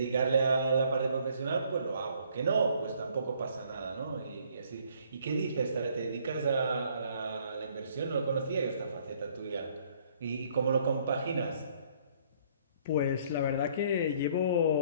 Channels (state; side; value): inverted; both; correlation -0.62